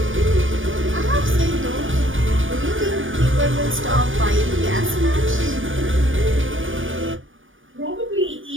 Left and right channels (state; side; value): late; left; 0.57 ms